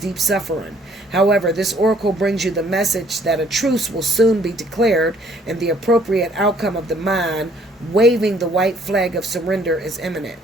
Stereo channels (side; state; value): both; normal; correlation 0.62